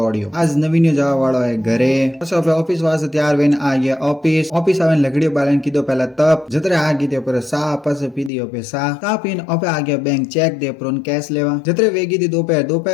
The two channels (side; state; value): right; drops out; at 8.3 s